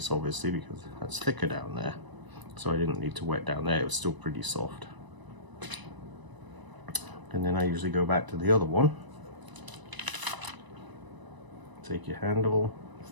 obviously, because that's thicker down there. So I didn't need to wet down there, it was still pretty soft. And then I usually go back to the other one. Take your handle,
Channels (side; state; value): left; late; 1.0 ms